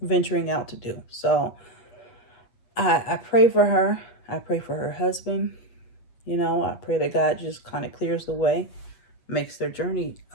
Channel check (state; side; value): late; right; 8.2 ms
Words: venturing out to do. So I pray for her. I pray for her husband. I pray that God just kind of clears the way, makes their journey